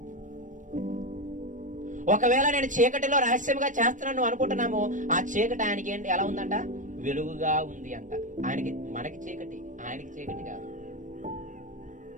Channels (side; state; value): left; late; 0.37 ms